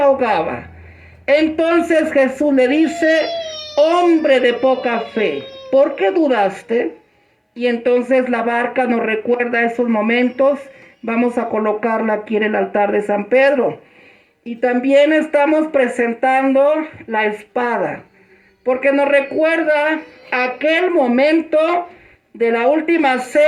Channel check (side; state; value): both; identical; correlation 1.00